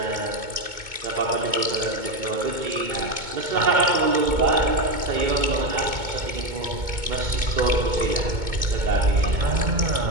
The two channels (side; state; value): left; late; 2.2 ms